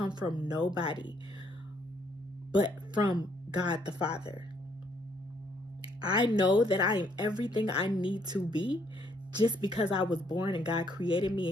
from nobody, but from God the Father. I know that I am everything I need to be just because I was born and God created me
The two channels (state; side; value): normal; both; correlation 0.69